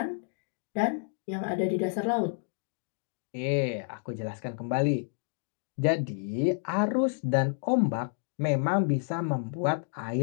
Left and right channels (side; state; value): right; silent; digital silence